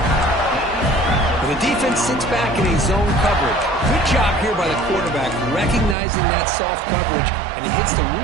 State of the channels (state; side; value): drops out; left; at 6.0 s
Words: The defense sits back in a zone coverage. Good job here by the quarterback, recognizing that soft coverage, and he hits the